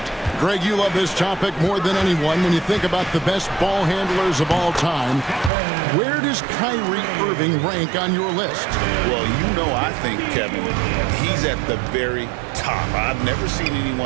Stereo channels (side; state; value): left; drops out; at 5.5 s